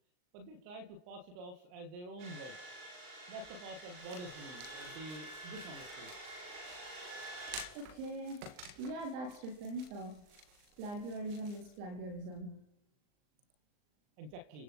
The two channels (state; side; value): late; left; 39 ms